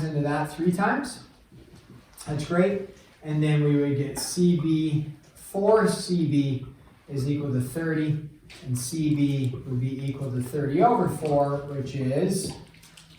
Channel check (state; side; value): identical; both; correlation 1.00